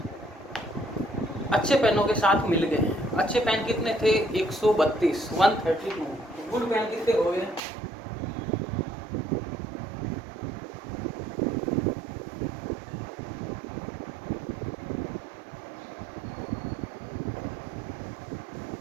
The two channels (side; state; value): left; drops out; at 7.6 s